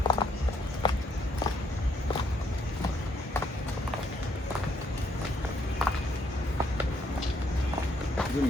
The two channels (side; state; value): both; normal; correlation 0.72